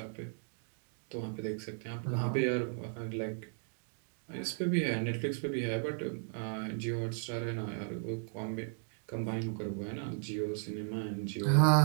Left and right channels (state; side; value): silent; left; digital silence